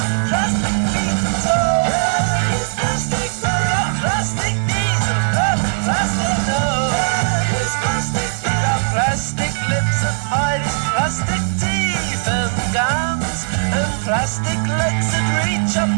plastic feet and toes. He's plastic, got plastic knees and plastic nose. He's plastic, got plastic lips and hide his plastic teeth and gums, and plastic legs that reach up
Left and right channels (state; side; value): silent; left; 67 dB below the other